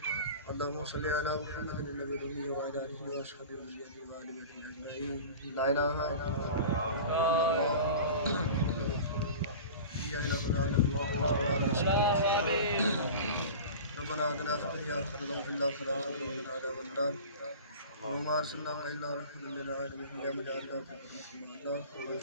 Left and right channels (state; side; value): inverted; both; correlation -0.36